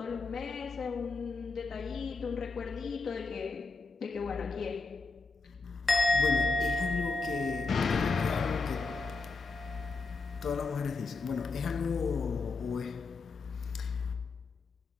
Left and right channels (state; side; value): quieter; right; 4.1 dB